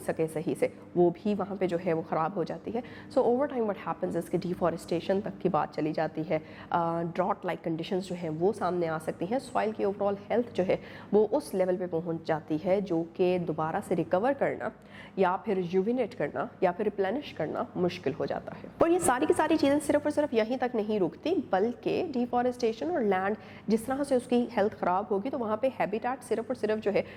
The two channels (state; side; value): identical; both; correlation 1.00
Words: सके सही से, वो भी वहाँ पे जो है वो ख़राब हो जाती है. So over time what happens इसके डिफॉरेस्टेशन तक की बात चली जाती है. ड्रॉट लाइक कंडीशंस जो हैं वो सामने आ सकती हैं. सॉइल की ओवरऑल हेल्थ जो है वो उस लेवल पे पहुँच जाती है जो कि दोबारा से रिकवर करना या फिर रिजुविनेट करना या फिर रिप्लेनिश करना मुश्किल हो जाता है. और ये सारी की सारी चीज़ें सिर्फ और सिर्फ यहीं तक नहीं रुकती, बल्कि डिफॉरेस्टेशन और लैंड जिस तरह से उसकी हेल्थ ख़राब होगी तो वहाँ पर हैबिटेट सिर्फ और सिर्फ जो है